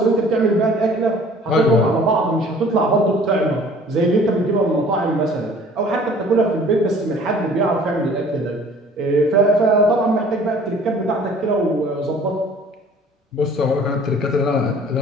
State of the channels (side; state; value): both; normal; correlation 0.51